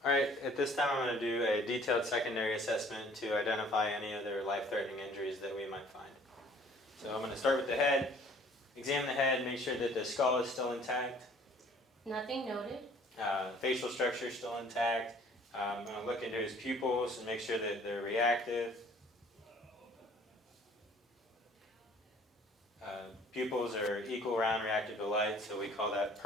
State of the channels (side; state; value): both; normal; correlation 0.55